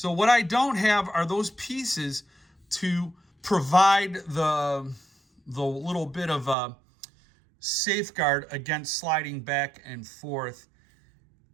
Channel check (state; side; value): drops out; left; at 6.6 s